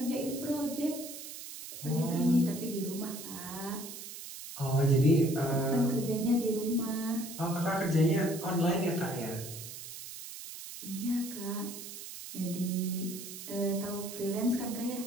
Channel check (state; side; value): noise; right; hiss, 11 dB below the sound